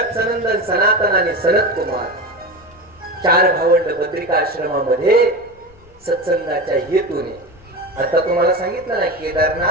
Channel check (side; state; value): left; noise; rumble, 27 dB below the sound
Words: सनंदन सनातन आणि सनत कुमार 4 भावंड बद्रिकाश्रमामध्ये सत्संगाच्या हेतूने. आता तुम्हाला सांगितलं ना